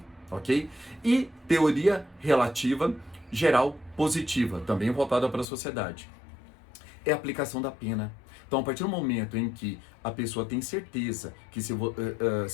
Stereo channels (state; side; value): drops out; right; at 5.5 s